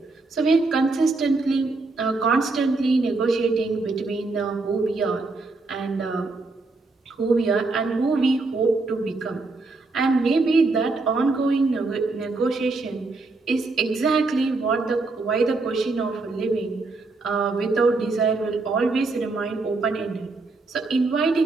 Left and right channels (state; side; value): quieter; left; 3.6 dB